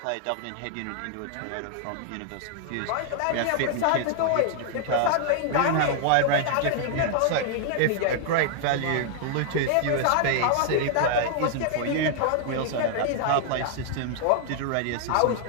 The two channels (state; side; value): different; both; correlation 0.00